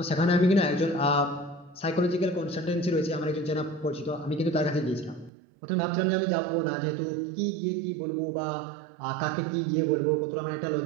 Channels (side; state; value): left; drops out; at 5.3 s